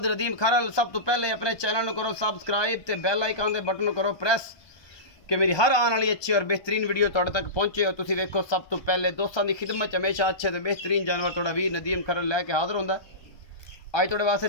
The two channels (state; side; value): late; right; 1.2 ms